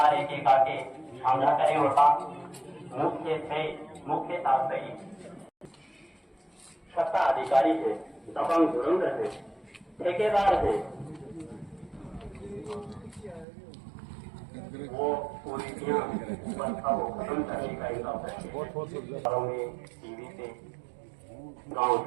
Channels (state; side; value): drops out; left; at 13.5 s